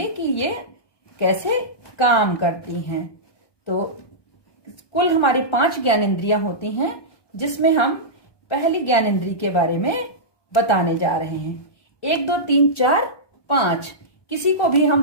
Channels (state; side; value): late; right; 1.2 ms